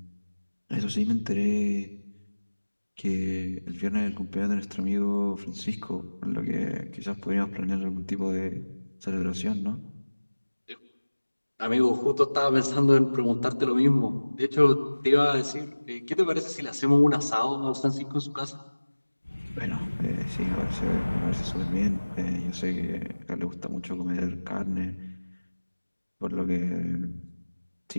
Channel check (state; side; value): inverted; both; correlation -1.00